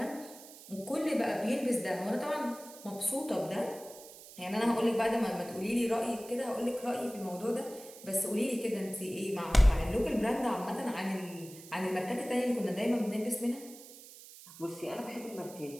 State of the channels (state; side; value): noise; right; hiss, 17 dB below the sound